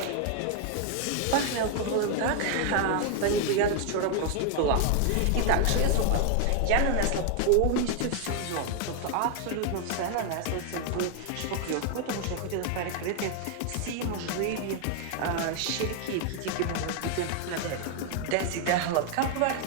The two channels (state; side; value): different; both; correlation 0.00